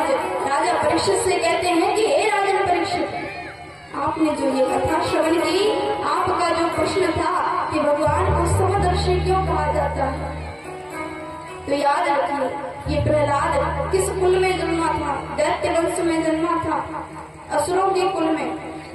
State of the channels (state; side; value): identical; both; correlation 1.00